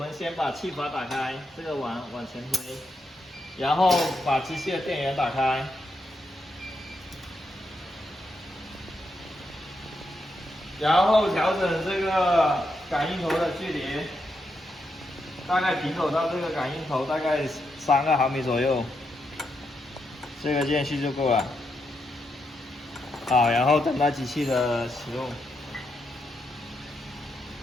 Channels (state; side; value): normal; both; correlation 0.82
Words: 先把气阀打开，这个往前推，然后把机器的电源打开，然后调整这个感应头的距离，大概平走到这个感应头大概3毫米左右，这个间隙就够了。好，然后等待机器的启动，